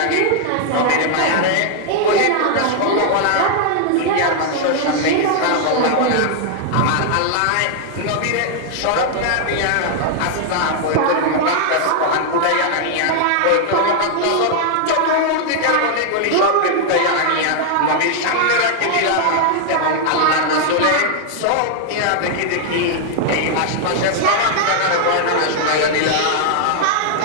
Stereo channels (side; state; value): both; different; correlation 0.00